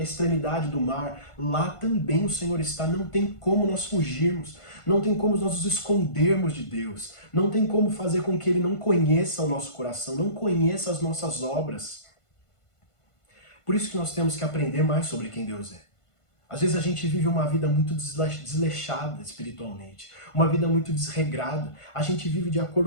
extremidade do mar, lá também o Senhor está. Não tem como nós fugirmos. Não tem como nós nos escondermos de Deus. Não tem como fazer com que Ele não conheça o nosso coração, não conheça as nossas obras. Por isso que nós temos que aprender mais sobre quem Deus é. Às vezes a gente vive uma vida muito desleixada espiritualmente, uma vida muito desregrada. A gente vive de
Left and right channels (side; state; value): right; late; 1.5 ms